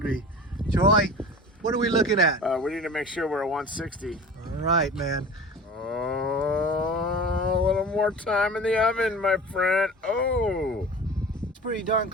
Troy, what are we looking at? We need to make sure we're at 160. All right, man. Oh, a little more time in the oven, my friend. Oh. It's pretty darn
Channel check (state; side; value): normal; both; correlation 0.37